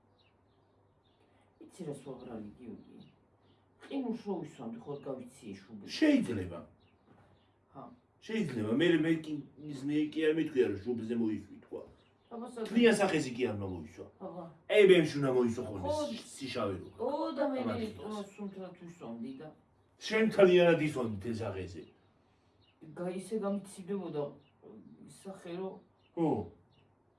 იცი რა სოღრალი გიოგი. ყინულს რო ვისვამდი ხო გავიცი შუბი. შეიძლება. ჰა. შეიძლება მე კი არ მეთქვია რომ შუბზე მოისვი თქვა. აბასა. თლიან სახეზე კი არ მოისვა. აბა. აი ბემში უნდა მოისვა ხოლმე სიშავე რო. ო და მე სუნთრად ვისვამდი და შენ თლიანად ისვამდი თელ სახეზე. ისე გამიცივდებოდა სახე რო ხო.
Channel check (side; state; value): both; identical; correlation 1.00